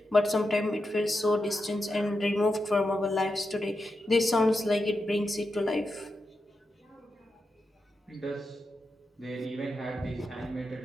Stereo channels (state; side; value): normal; both; correlation 0.88